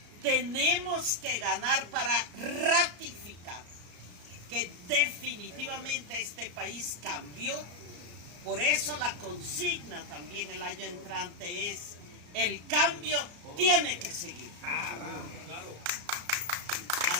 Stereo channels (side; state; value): left; late; 33 ms